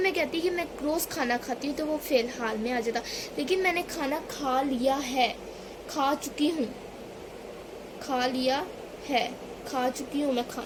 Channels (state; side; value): identical; both; correlation 1.00